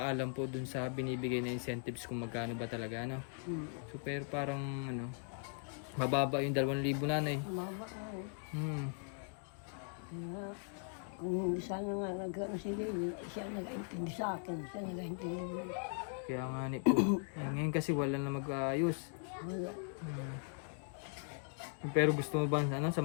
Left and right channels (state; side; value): silent; right; 52 dB below the other